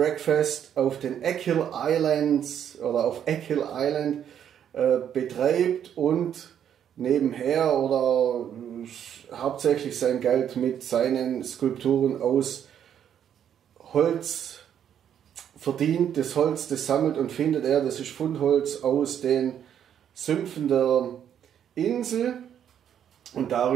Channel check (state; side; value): quieter; left; 9.3 dB